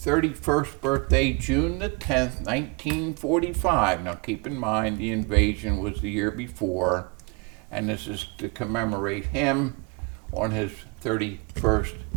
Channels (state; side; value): quieter; left; 30.0 dB